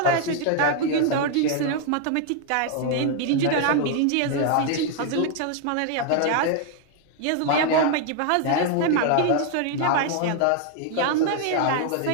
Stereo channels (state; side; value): different; both; correlation 0.00